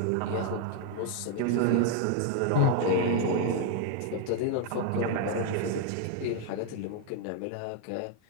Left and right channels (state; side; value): different; both; correlation 0.00